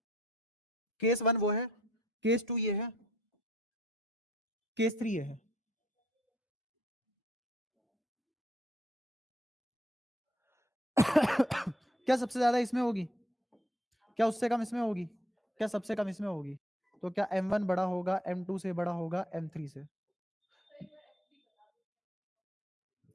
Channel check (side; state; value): both; normal; correlation 0.67